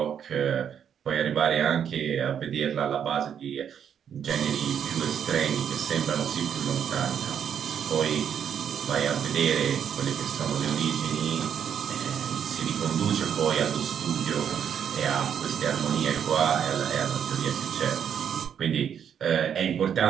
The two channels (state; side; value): quieter; left; 8.4 dB